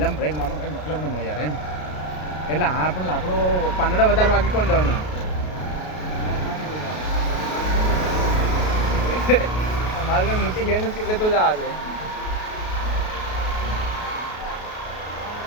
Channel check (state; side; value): late; right; 33 ms